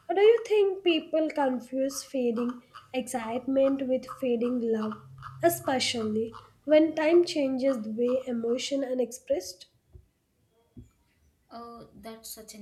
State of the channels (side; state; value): both; identical; correlation 1.00